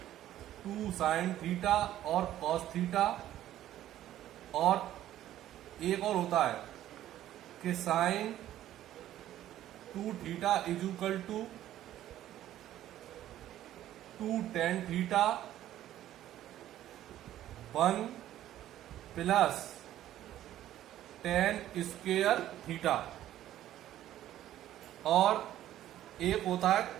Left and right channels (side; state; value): left; quieter; 12.8 dB